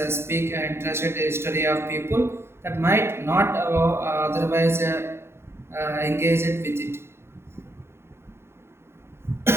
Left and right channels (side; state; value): left; late; 0.12 ms